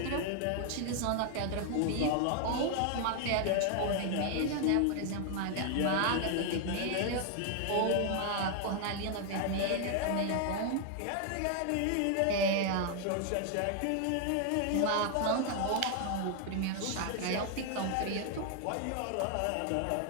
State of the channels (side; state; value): both; different; correlation 0.00